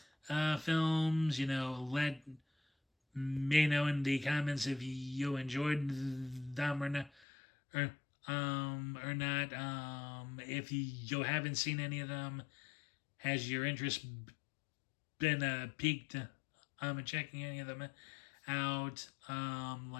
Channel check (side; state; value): right; drops out; at 7.2 s